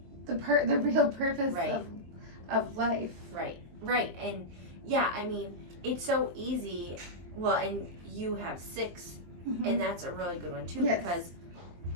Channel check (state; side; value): late; left; 23 ms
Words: the real purpose of life. Right. And yeah, I mean, it's so easy. Well, and you have 6, and that's a really good one too, because